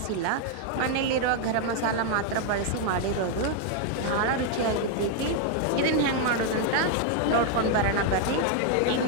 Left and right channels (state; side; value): different; both; correlation 0.00